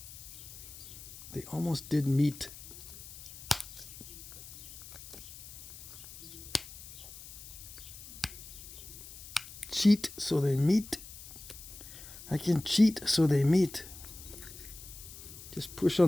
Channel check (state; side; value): noise; left; hiss, 15 dB below the sound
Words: They almost did meet. Cheat so they meet. I can cheat so they meet. Just push